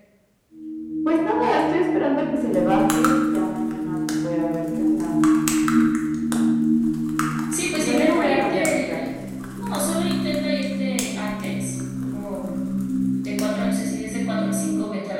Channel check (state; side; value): identical; both; correlation 1.00